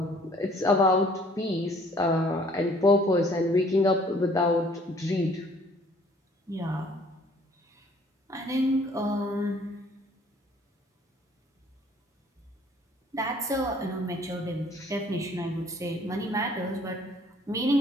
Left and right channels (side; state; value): both; normal; correlation 0.57